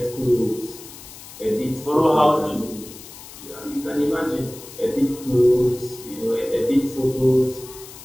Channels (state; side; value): noise; left; hiss, 16 dB below the sound